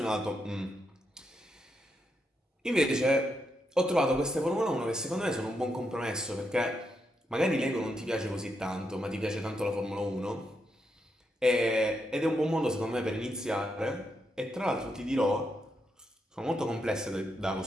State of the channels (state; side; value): normal; both; correlation 0.82